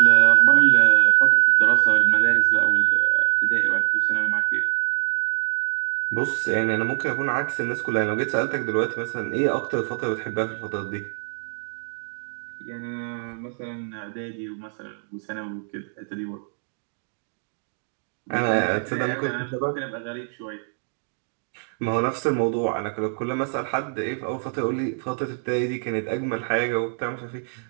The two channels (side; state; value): left; silent; digital silence